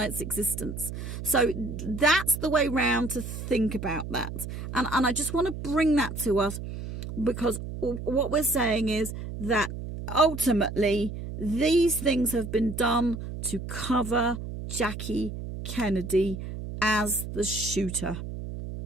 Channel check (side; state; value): right; noise; hum, 8 dB below the sound